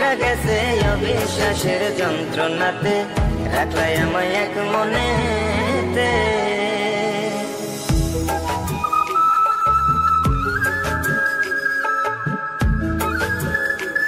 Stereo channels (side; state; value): both; identical; correlation 1.00